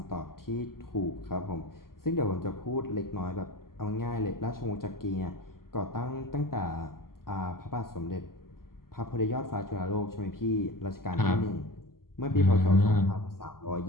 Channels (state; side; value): late; right; 0.92 ms